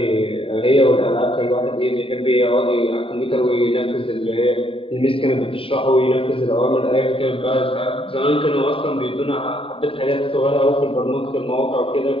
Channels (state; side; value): late; right; 0.26 ms